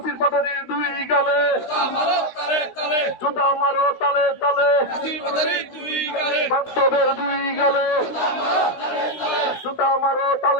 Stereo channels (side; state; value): right; late; 16 ms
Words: পাঠানির দুই গালে জুতা মারো তালে তালে বাস্তবের দুই গালে জুতা মারো